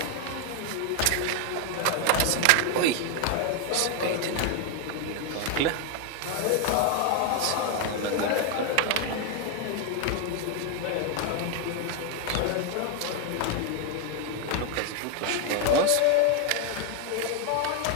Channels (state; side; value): different; both; correlation 0.01